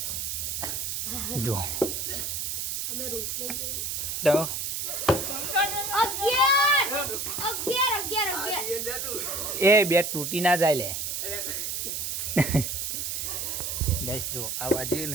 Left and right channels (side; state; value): right; noise; hiss, 2 dB below the sound